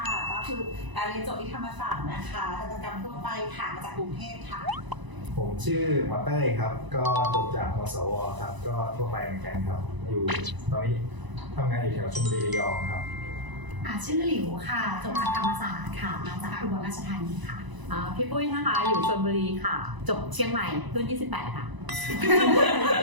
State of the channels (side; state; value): left; late; 1.0 ms